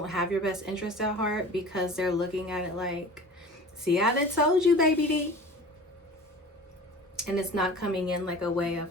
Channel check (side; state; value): both; normal; correlation 0.40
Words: have your best interest at heart, because they're looking at it like, see, I done told you, baby D. And it's not coming in like a way